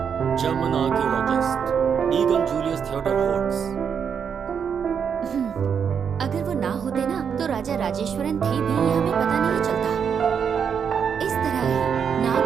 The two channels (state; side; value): quieter; left; 7.2 dB